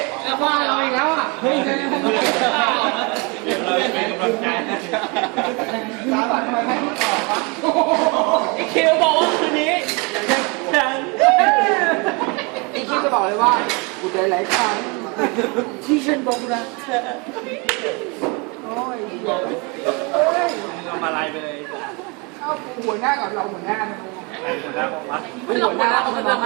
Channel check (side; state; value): left; quieter; 30.1 dB